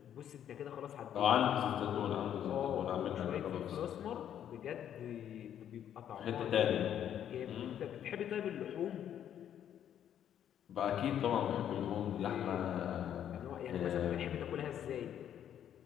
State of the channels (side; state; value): right; quieter; 10.0 dB